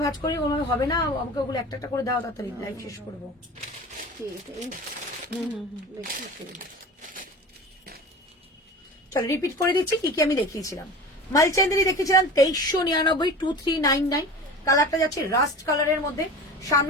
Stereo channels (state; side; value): normal; both; correlation 0.35